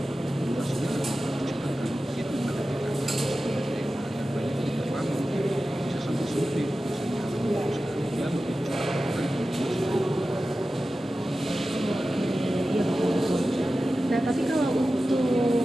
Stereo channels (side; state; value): both; normal; correlation 0.94